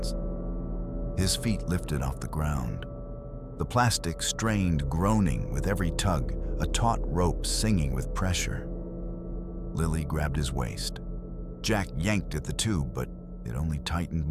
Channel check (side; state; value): both; identical; correlation 1.00